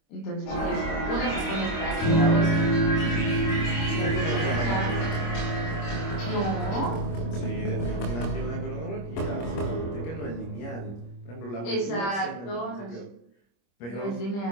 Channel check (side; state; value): right; late; 25 ms